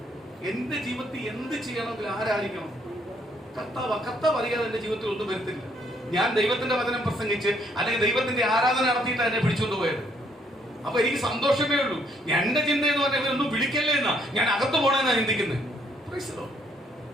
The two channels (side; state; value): both; normal; correlation 0.68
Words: എന്റെ ജീവിതത്തിൽ എന്ത് ചെയ്യണമെങ്കിൽ ആരായിരിക്കണം? കർത്താവ് അറിയാതെ എന്റെ ജീവിതത്തിൽ ഒന്നും വരത്തില്ല. ഞാൻ ദൈവത്തിന്റെ വചനം പ്രസംഗിച്ച് അല്ലെങ്കിൽ ദൈവത്തിന്റെ ആരാധന നടത്തിയിട്ടാണ് എന്നെ പിടിച്ചുകൊണ്ട് പോയത്. അപ്പൊ എനിക്ക് സന്തോഷമേ ഉള്ളൂ. എന്റെ ചിന്ത എന്ന് പറഞ്ഞാൽ ഇവരൊന്നും വിളിക്കല്ലേ എന്നാ, ഞാൻ അകത്ത് പോണെന്നാ ചിന്തിക്കുന്നത്.